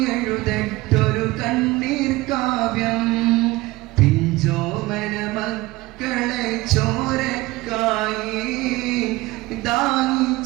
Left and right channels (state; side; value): quieter; left; 20.0 dB